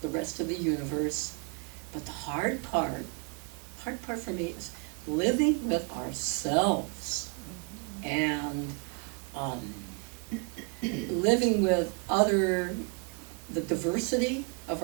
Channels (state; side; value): quieter; left; 36.5 dB